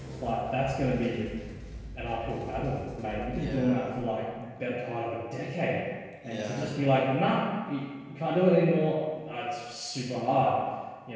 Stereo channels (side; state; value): both; identical; correlation 1.00